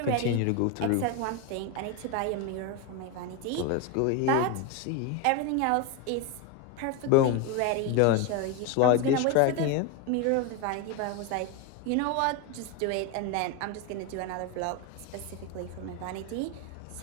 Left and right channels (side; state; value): both; different; correlation 0.02